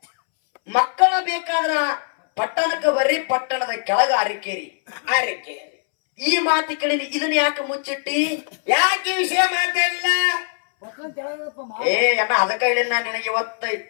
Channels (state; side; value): silent; right; 65 dB below the other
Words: ಮಕ್ಕಳ ಬೇಕಾದ್ರ ಪಟ್ಟಣಕ್ಕೆ ಬರ್ರಿ ಪಟ್ಟಣದ ಕೆಳಗ ಅರಿಕೇರಿ ಆರಕ್ಕೆ ಈ ಮಾತು ಕೇಳಿನಿ ಇದನ್ನ ಯಾಕೆ ಮುಚ್ಚಿಟ್ಟಿ ಯಾಕೆ ವಿಷಯ ಮಾತಾಡಿಲ್ಲ ಏ ಅಣ್ಣ ಅದಕ್ಕ ಹೇಳಿನ ನಿನಗೆ ಇವತ್ತ